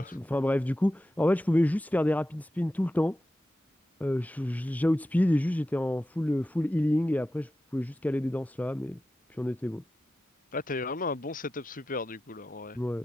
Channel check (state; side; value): normal; both; correlation 0.93